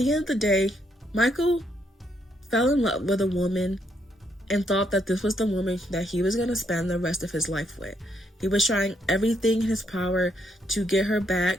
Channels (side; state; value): both; normal; correlation 0.74